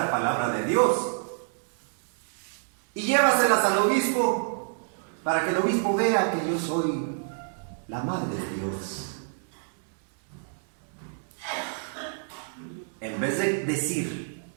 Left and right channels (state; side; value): silent; left; 60 dB below the other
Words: palabra de Dios. Y llévaselas al obispo, para que el obispo vea que yo soy la madre de Dios. En vez de decir,